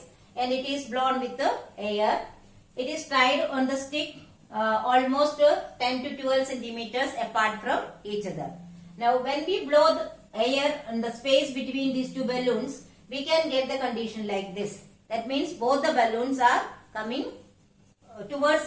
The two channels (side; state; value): both; identical; correlation 1.00